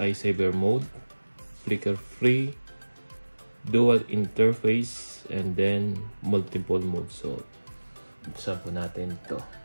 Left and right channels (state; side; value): inverted; both; correlation -1.00